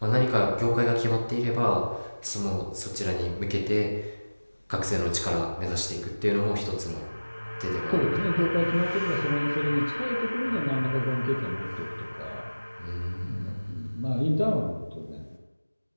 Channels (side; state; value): both; inverted; correlation -1.00